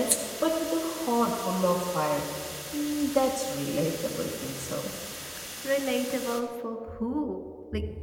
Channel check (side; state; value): both; identical; correlation 1.00